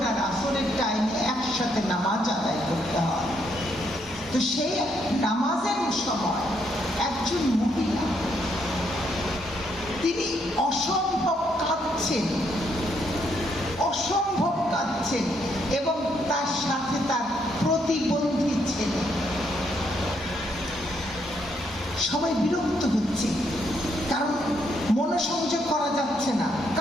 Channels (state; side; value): normal; both; correlation 0.74